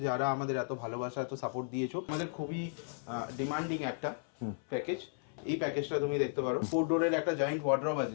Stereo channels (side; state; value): right; silent; 55 dB below the other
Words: যারা আমাদের এত ভালোবাসা এত সাপোর্ট দিয়েছো। আমাদের খুবই ডিমান্ডিং একটা প্যাকেজ। এই প্যাকেজটা তুমি দেখতে পারো, 4 ডোরের একটা জয়েন্ট ওয়ার্ড্রব আছে